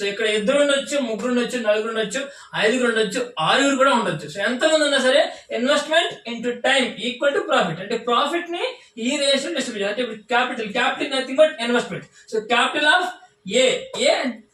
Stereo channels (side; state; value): both; identical; correlation 1.00